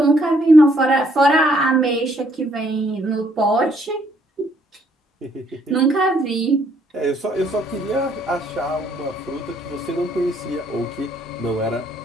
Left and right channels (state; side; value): normal; both; correlation 0.68